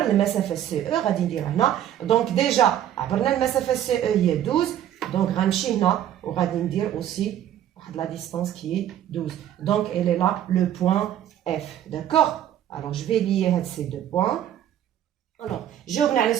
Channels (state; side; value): quieter; left; 11.1 dB